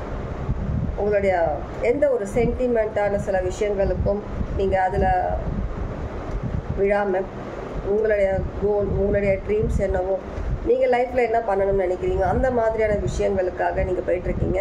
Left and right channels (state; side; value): identical; both; correlation 1.00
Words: உங்களுடைய எந்த ஒரு சென்டிமெண்ட்டான சில விஷயங்களுக்கும் நீங்கள் அதில் விழாமல் உங்களுடைய கோல், உங்களுடைய ட்ரீம்ஸ் என்னவோ, நீங்கள் லைஃப்பில் என்ன பண்ணணும்னு நினைக்கிறீங்க அந்த மாதிரியான விஷயங்களுக்காக நீங்கள் போயிட்டுருக்கீங்க.